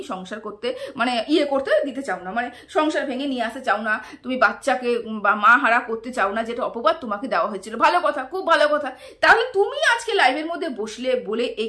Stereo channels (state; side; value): identical; both; correlation 1.00